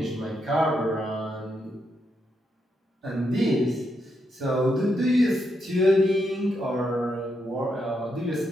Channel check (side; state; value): both; normal; correlation 0.81